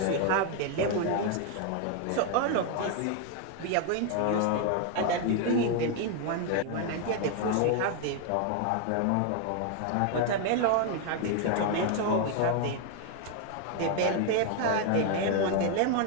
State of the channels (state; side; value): different; both; correlation 0.00